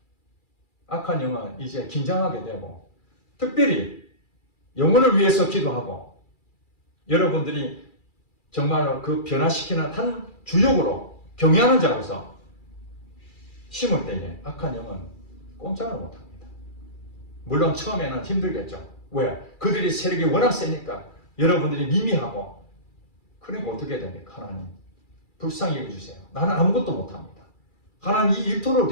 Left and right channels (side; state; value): right; late; 2.4 ms